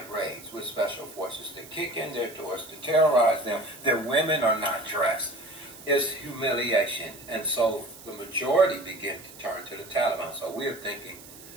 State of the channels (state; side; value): noise; right; hiss, 18 dB below the sound